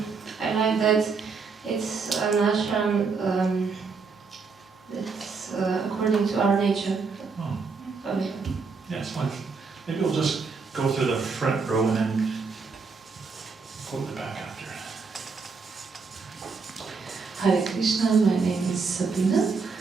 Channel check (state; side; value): quieter; left; 4.9 dB